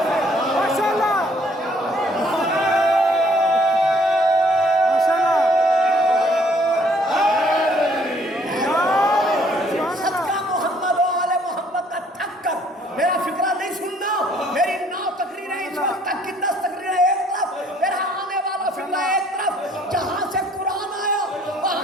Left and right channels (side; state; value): both; normal; correlation 0.61